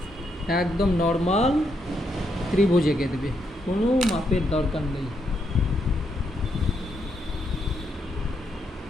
একদম নর্মাল ত্রিভুজ এঁকে দেবে, কোনো মাপের দরকার নেই।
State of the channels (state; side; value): normal; both; correlation 0.79